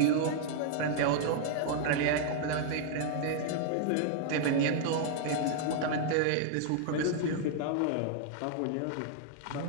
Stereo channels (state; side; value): different; both; correlation -0.01